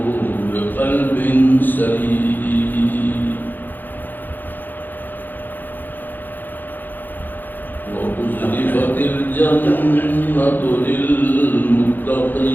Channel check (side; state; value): right; late; 0.088 ms